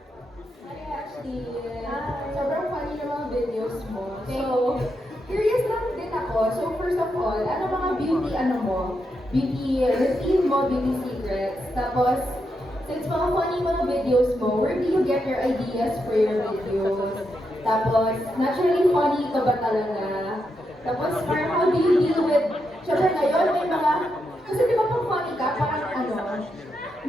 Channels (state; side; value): normal; both; correlation 0.83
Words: Hi Ashley! Sobrang funny ng mga videos mo. So, curious lang din ako. So, first of all, ano mga beauty beauty routine mo, beauty secrets? Tapos, since mga funny mga videos mo, where do you get your ideas for your videos? Tapos, naturally funny ka ba talaga? Tapos, parang how do you deal with, syempre ngayon may mga, kasi di ba pag funny ka, parang